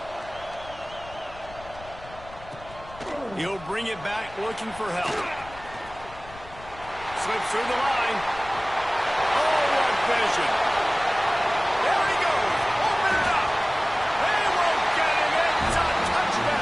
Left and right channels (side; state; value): left; noise; rumble, 19 dB below the sound